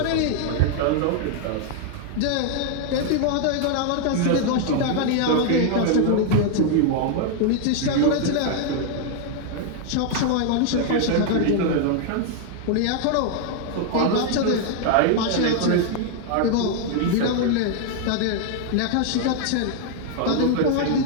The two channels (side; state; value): both; different; correlation 0.00